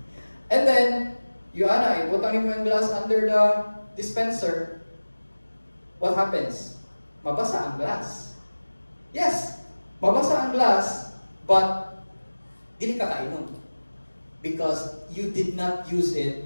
And then, ibutangin mo yung glass under the dispenser. What happens? Mabasa ang glass. Yes, mabasa ang glass, but dili ka kainom. Because you did not use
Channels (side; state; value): both; inverted; correlation -1.00